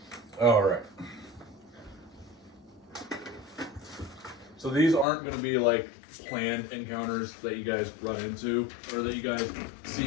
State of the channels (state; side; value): drops out; right; at 5.1 s